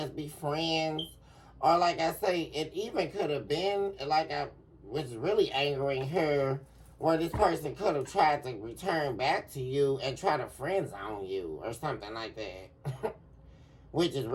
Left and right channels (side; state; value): both; identical; correlation 1.00